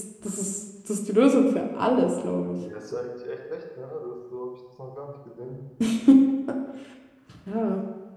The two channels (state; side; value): identical; both; correlation 1.00